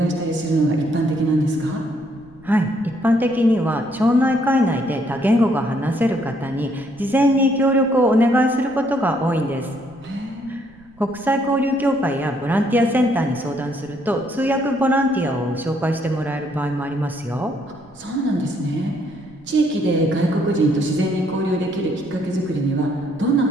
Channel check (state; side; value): noise; right; rumble, 28 dB below the sound